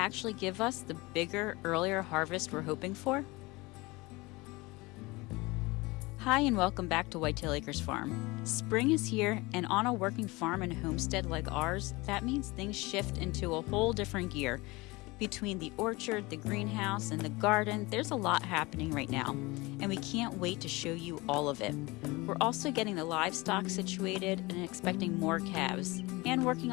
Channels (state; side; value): quieter; right; 23.2 dB